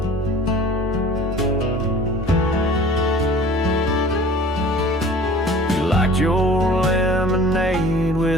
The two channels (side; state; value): both; normal; correlation 0.46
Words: You liked your lemonade